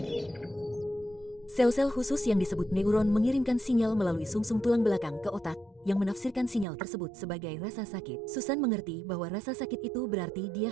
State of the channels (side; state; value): left; drops out; at 6.7 s